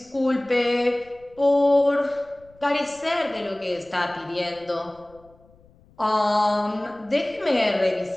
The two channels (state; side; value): noise; left; rumble, 29 dB below the sound